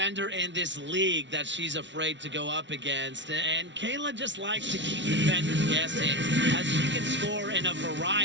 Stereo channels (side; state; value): left; late; 0.53 ms